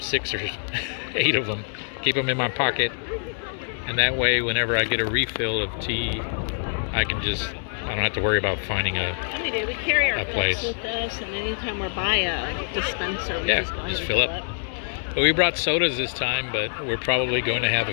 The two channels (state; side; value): silent; right; 62 dB below the other